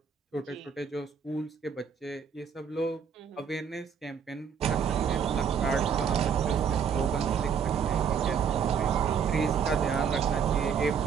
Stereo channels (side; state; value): left; quieter; 7.0 dB